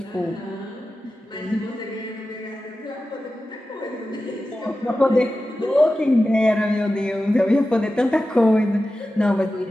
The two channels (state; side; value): normal; both; correlation 0.93